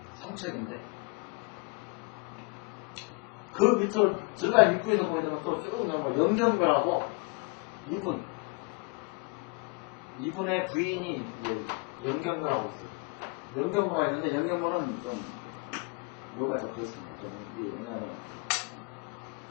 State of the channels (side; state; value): right; quieter; 30.8 dB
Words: 삼척인데 그 밑으로 들어간 입구에서 보게 되면 또 쭉 나오면 영경거라고 이분의 부인이 이제 영경거라고 있어요. 영경모가 있는데 영경모는 좀 묘가 더 그렇습니다. 왜냐하면